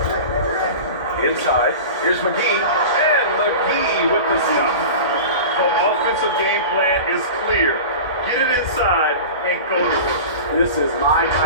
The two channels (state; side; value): inverted; both; correlation -0.33